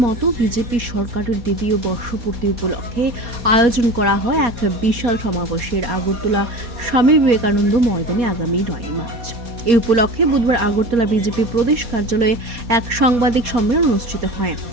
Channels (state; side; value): late; left; 4.2 ms